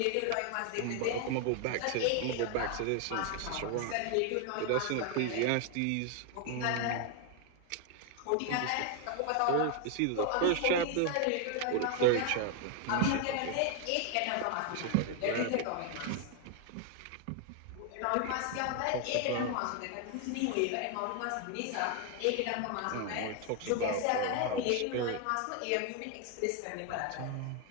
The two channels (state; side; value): different; both; correlation 0.01